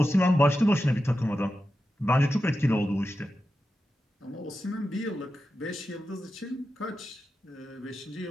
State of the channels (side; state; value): both; normal; correlation 0.91